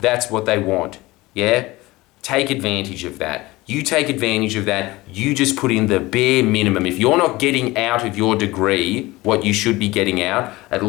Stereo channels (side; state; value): right; quieter; 20.2 dB